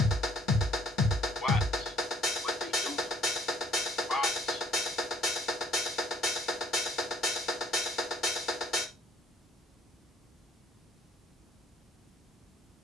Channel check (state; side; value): normal; both; correlation 0.59